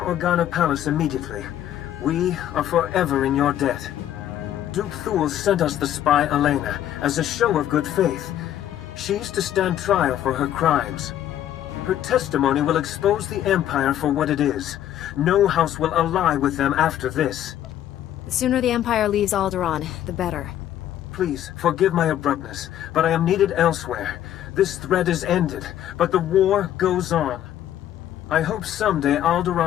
Palace immediately. We are forever in your debt. Duke Thule sent us the spy Elena as a show of good faith. She's to stand trial for her crimes. Her testimony will expose the Empire for what it is. No house will ally with them after this. The sooner the Empire leaves Alderaan, the better. Please, forgive my abruptness, but I am needed elsewhere. This threat is ended, but the war goes on. I hope someday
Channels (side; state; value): right; quieter; 11.5 dB